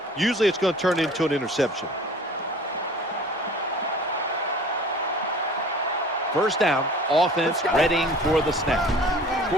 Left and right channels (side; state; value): both; normal; correlation 0.46